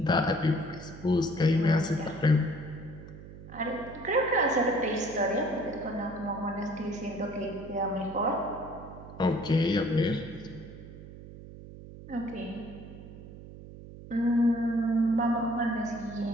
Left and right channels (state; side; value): noise; right; hum, 15 dB below the sound